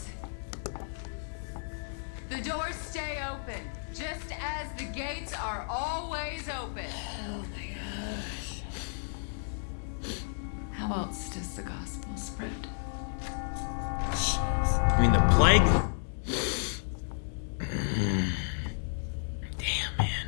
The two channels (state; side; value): silent; right; digital silence